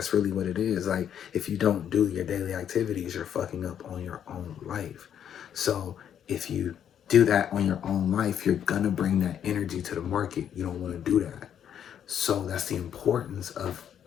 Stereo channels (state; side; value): quieter; right; 9.2 dB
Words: really what it is. Like, if you don't do your daily activities, you're fucking up on your own life. So if you do that on your own life, you're gonna bring that energy to the market. You don't want to do that. So that's the importance of